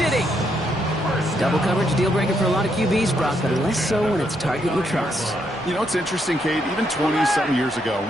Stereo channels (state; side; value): normal; both; correlation 0.76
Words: Double coverage deal breaker for a lot of QBs, Brock, but less so when it's target you trust. You know, it's interesting, Kate, even 20-something years ago,